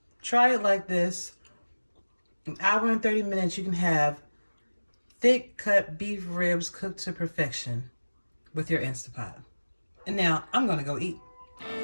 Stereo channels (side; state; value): both; inverted; correlation -1.00